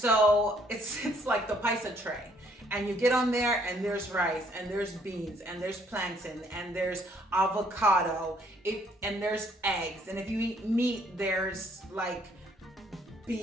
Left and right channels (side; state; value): both; normal; correlation 0.65